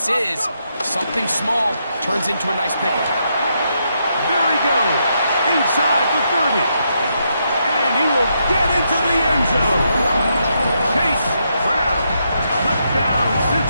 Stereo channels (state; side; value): inverted; both; correlation -0.79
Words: is. Something small turns into a nice pickup. There he goes, inside the 30. And he will get into the end zone. Chase Brown, touchdown